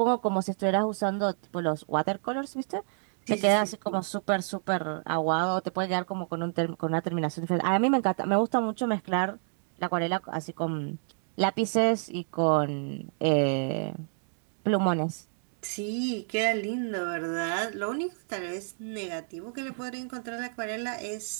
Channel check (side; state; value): left; silent; digital silence